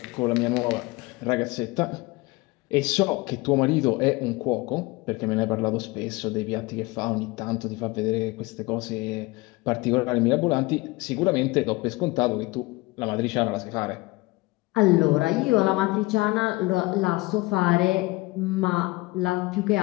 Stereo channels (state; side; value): quieter; right; 22.6 dB